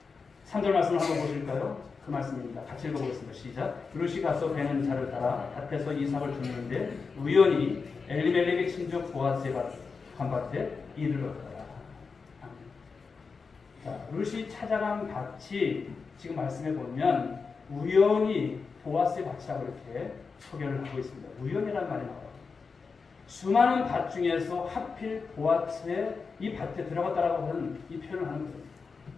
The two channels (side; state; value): right; quieter; 4.9 dB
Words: 3절 말씀을 한번 보실까요? 그 말씀입니다. 같이 읽어보겠습니다. 시작. 룻이 가서 베는 자를 따라 밭에서 이삭을 줍는데 우연히 엘리멜렉의 친족 보아스의 밭에 이르렀더라. 자, 룻이 찾아간 밭이 지금 말씀해 보면 우연히 보아스의 밭이라고 이렇게 소개를 하고 있습니다. 우연이라는 말이 나와요. 수많은 밭 중에서 하필 보아스의 이 밭에 들어갔다라고 하는 이 표현을 하는 거예요.